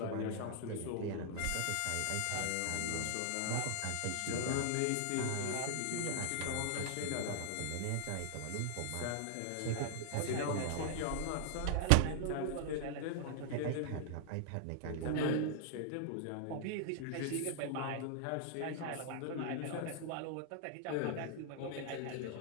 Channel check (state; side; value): different; both; correlation -0.01